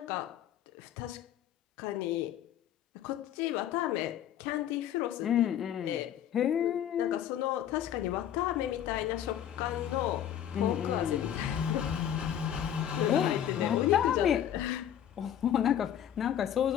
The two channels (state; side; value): quieter; right; 10.3 dB